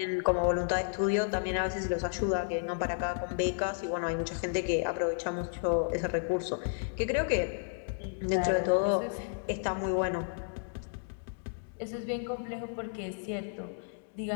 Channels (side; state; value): right; silent; digital silence